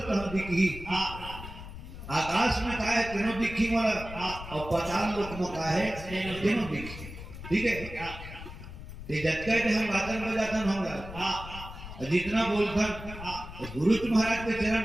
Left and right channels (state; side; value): noise; left; rumble, 12 dB below the sound